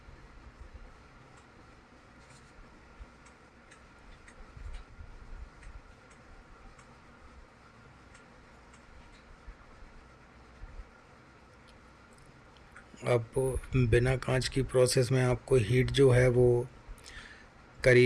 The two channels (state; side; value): identical; both; correlation 1.00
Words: अब बिना कांच की प्रोसेस में आपको हीट जो है वो